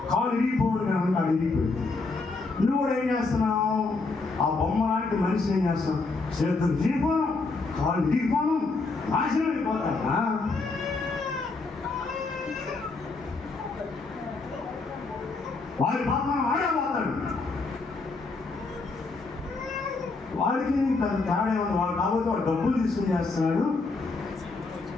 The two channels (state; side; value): quieter; right; 3.8 dB